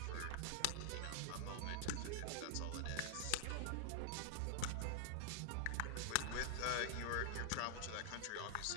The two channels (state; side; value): different; both; correlation -0.01